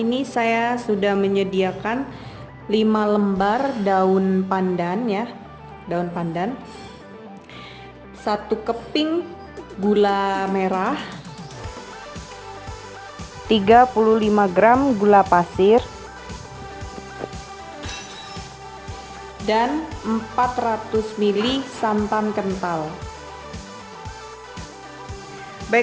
saya sudah menyediakan 5 lembar daun pandan ya, daun pandan, 1 keping gula merah, 35 gram gula pasir, dan 400 ml santan kental.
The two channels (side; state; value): both; identical; correlation 1.00